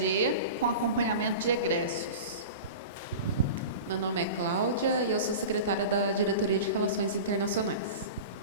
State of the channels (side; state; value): both; inverted; correlation -0.32